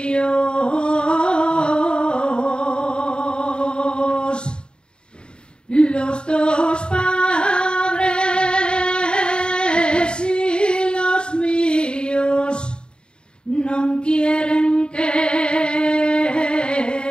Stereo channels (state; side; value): late; right; 0.051 ms